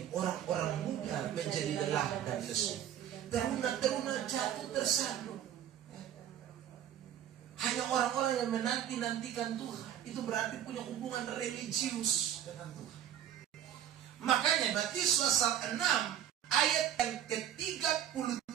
orang-orang muda menjadi lelah dan lesu, teruna-teruna jatuh tersaduk. Hanya orang-orang yang menanti-nantikan Tuhan, itu berarti punya hubungan religius dengan Tuhan. Makanya Matius pasal 6 ayat yang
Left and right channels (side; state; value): left; quieter; 10.5 dB